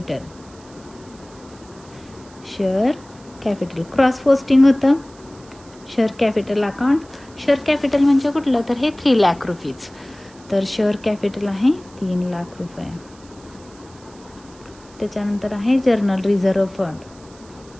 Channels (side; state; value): right; noise; hiss, 25 dB below the sound